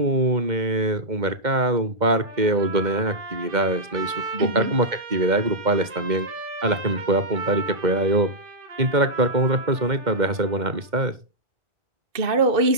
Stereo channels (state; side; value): late; left; 2.1 ms